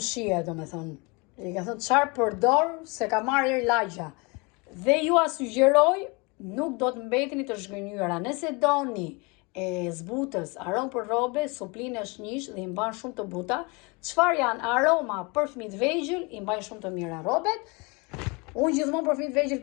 domethënë. I ka thënë çfarë përdor se ka marrë erë lagja. Dhe ju a sugjeroj, nuk do të mbeteni të zhgënjyra. Nëse doni zbutës, aromë për rrobe, suplinë është njësh dhe i mban shumë të buta. Çfarë janë aroma për fëmijët vegjël, i mbajnë shumë të mira rrobet. Unë gjithmonë për fëmijët vegjël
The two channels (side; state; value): right; quieter; 28.7 dB